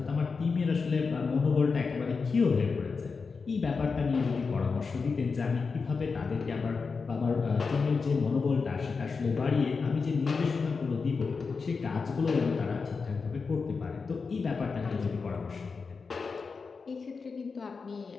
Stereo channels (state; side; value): quieter; right; 4.9 dB